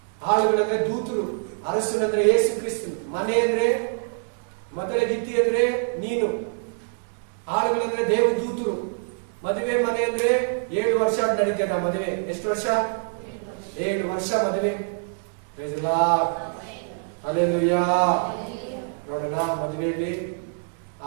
ಆಳುಗಳಂದ್ರೆ ದೂತರು, ಅರಸನಂದ್ರೆ ಯೇಸು ಕ್ರಿಸ್ತನು, ಮನೆ ಅಂದ್ರೆ ಮೊದಲ ಗಿತ್ತಿ ಅಂದ್ರೆ ನೀನು, ಆಳುಗಳಂದ್ರೆ ದೇವದೂತರು, ಮದುವೆ ಮನೆ ಅಂದ್ರೆ 7 ವರ್ಷ ನಡೀತದ ಮದುವೆ. ಎಷ್ಟು ವರ್ಷ? 7 ವರ್ಷ ಮದುವೆ. ಹಲ್ಲೆಲೂಯಾ. ನೋಡೋಣ ಮದುವೆಯಲ್ಲಿ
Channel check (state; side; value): silent; left; digital silence